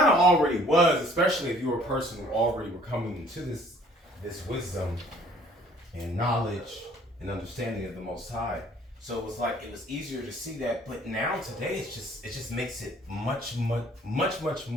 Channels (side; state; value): both; normal; correlation 0.57